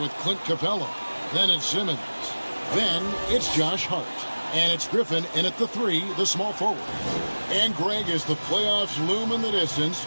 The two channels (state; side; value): inverted; both; correlation -1.00